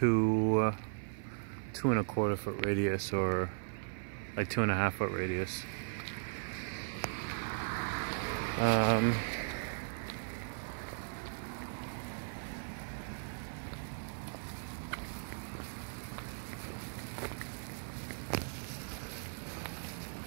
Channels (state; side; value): silent; left; 53 dB below the other